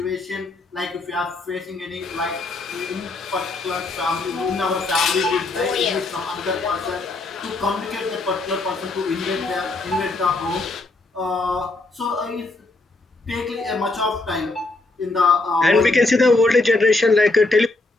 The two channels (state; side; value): quieter; right; 3.2 dB